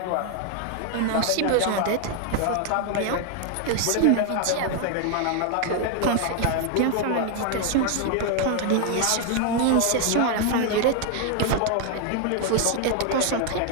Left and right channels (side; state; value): both; different; correlation 0.00